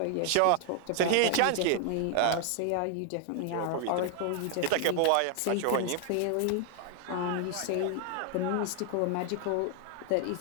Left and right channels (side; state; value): both; different; correlation 0.00